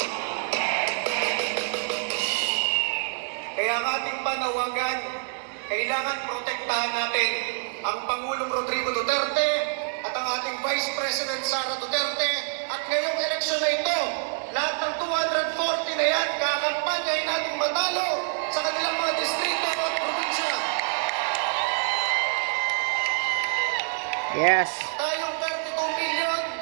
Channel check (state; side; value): silent; left; digital silence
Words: Kaya ang ating panawagan, kailangan protektahan natin ang Pangulong Rodrigo Duterte at ang ating Vice President Sara Duterte. At ngayong eleksyon na ito, lahat ng 240 na yan, kakampanyahin natin matalo sa kanilang mga distrito at probinsya. Yes. Tayong 32 million